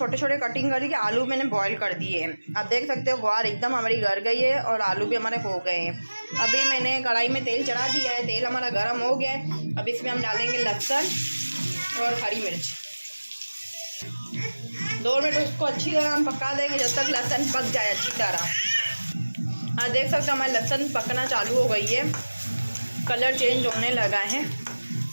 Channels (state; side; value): inverted; both; correlation -1.00